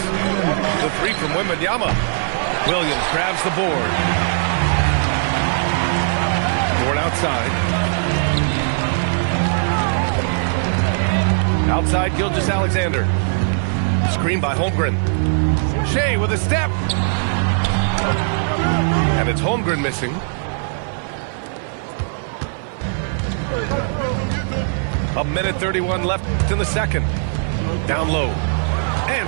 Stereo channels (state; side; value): silent; left; 57 dB below the other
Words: The 3 from Wembanyama. Williams grabs the board. Outside. Outside Gilgeous-Alexander. Screen by Holmgren. Shai with a step. And it's Holmgren missing. A minute 31 left in the second. Down low.